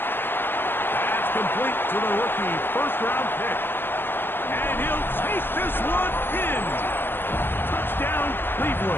That's complete to the rookie, first-round pick. And he'll take this one in. Touchdown,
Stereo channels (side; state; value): right; late; 0.099 ms